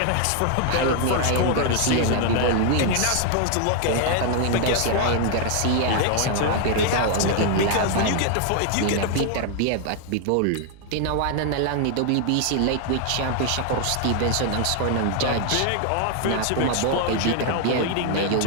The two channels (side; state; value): both; different; correlation 0.00